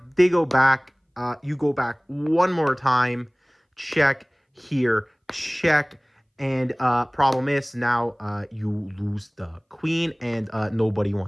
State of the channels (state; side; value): identical; both; correlation 1.00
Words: They go back. You go back one more time. Check here. Check. And problem is now you lose the queen, and nobody